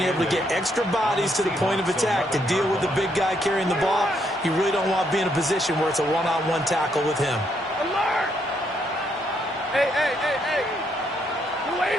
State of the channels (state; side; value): normal; both; correlation 0.74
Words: able to get extra bodies to the point of attack to deal with the big guy carrying the ball. You really don't want to be in a position where it's a one-on-one tackle with him. Alert! Hey, hey, hey, hey!